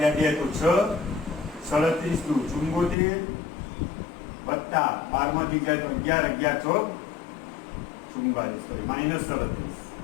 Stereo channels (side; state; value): right; drops out; at 3.0 s